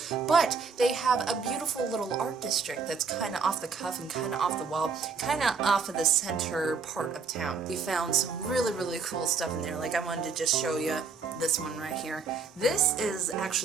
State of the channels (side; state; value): left; quieter; 5.2 dB